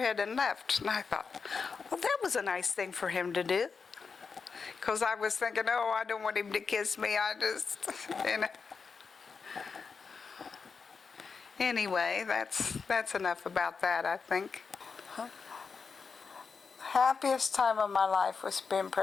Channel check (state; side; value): quieter; right; 5.2 dB